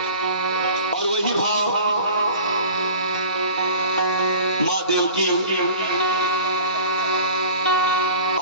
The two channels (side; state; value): both; inverted; correlation -0.42